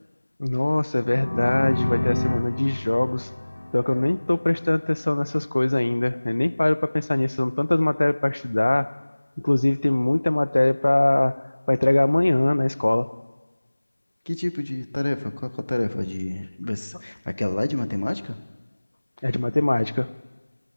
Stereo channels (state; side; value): inverted; both; correlation -1.00